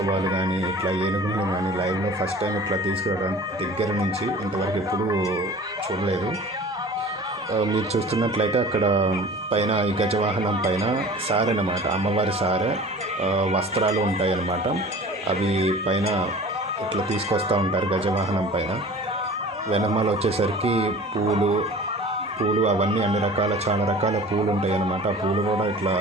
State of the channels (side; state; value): both; normal; correlation 0.42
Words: కానీ ఇట్లా ఏనుగులను కానీ లైవ్లో ఫస్ట్ టైం ఇట్లా తీసుకురావడం దగ్గర నుంచి ఇంతవరకు ఎప్పుడూ చూడలేదు. మీరు చూస్తున్నట్లయితే అక్కడ పైన ఈ గజవాహనం పైన సారె అన్నమాట, అమ్మవారి సారె వస్త్రాలు ఉంటాయి అన్నమాట. అవి పైన ఇట్లా తీసుకొస్తూ ఉంటారు గజవాహనం పైన. వెనమాల వచ్చేసరికి పూలు అవన్నీ అన్ని రకాల చాలా రకాల పూలు ఉంటాయి అన్నమాట. ఆ పూలు కూడా ఇట్లా